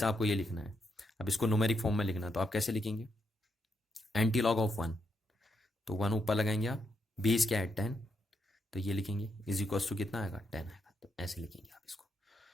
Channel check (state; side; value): normal; both; correlation 0.80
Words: आपको ये लिखना है। अब इसको न्यूमेरिक फॉर्म में लिखना है, तो आप कैसे लिखेंगे, एंटी लॉग ऑफ 1, तो 1 ऊपर लगाएंगे आप, बेस क्या है 10, तो ये लिखेंगे इज इक्वल्स टू कितना आएगा, 10 आएगा। तो ऐसे लिखेंगे आप इसको,